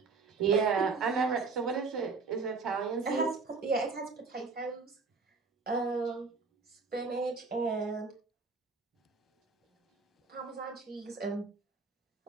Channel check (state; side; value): quieter; left; 4.5 dB